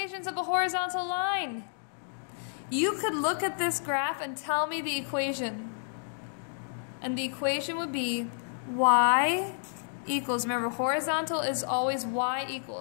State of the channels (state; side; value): silent; right; digital silence